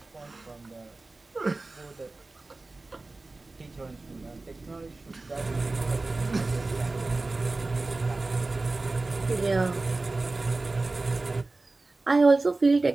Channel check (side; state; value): left; quieter; 3.3 dB